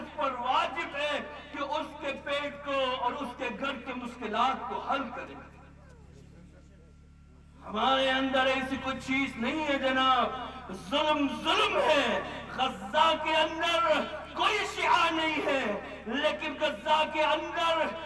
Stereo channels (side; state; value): both; identical; correlation 1.00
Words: پر واجب ہے کہ اس کے پیٹ کو اور اس کے گھر کے مشکلات کو حل کرے. ہمارے اندر ایسی کوئی چیز نہیں ہے جناب. ظلم ہے. غزہ کے اندر کوئی شیعہ نہیں ہے، لیکن غزہ کے اندر